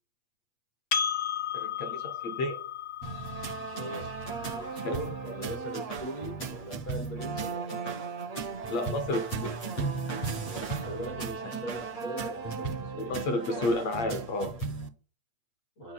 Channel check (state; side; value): late; right; 8.5 ms